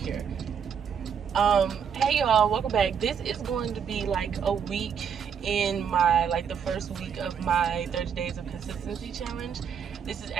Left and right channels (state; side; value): quieter; left; 7.3 dB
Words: Hey y'all, welcome back. This is going to be like a week in my, the first week of my 30 days of consistency challenge. This is